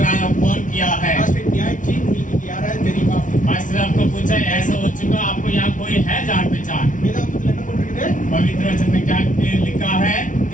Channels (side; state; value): right; late; 0.37 ms